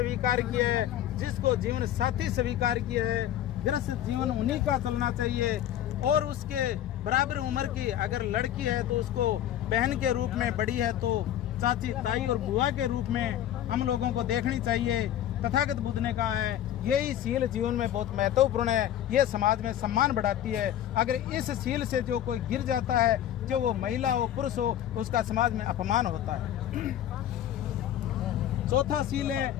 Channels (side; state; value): right; quieter; 11.5 dB